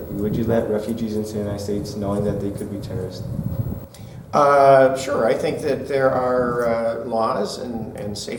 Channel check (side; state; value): both; identical; correlation 1.00